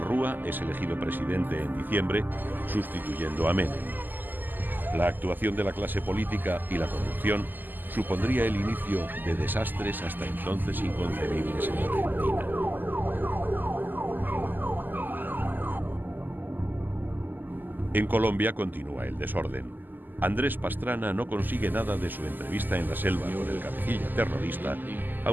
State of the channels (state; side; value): late; left; 0.088 ms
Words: es elegido presidente en diciembre, sustituyendo a Menem. La actuación de la clase política y la corrupción supondría el inicio de desastres hasta entonces inconcebibles en Argentina. En Colombia continúa el desorden. Andrés Pastrana no consigue nada de su entrevista en la selva con el cabecilla terrorista,